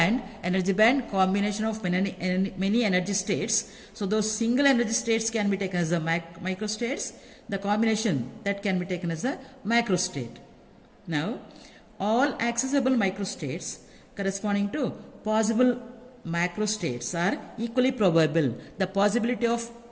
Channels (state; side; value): identical; both; correlation 1.00